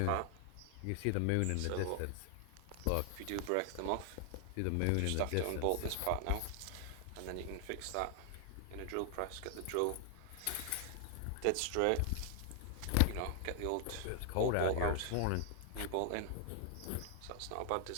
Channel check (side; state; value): both; different; correlation 0.00